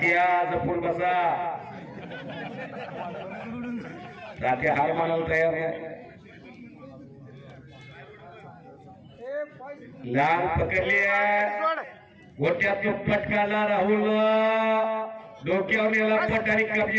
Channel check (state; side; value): identical; both; correlation 1.00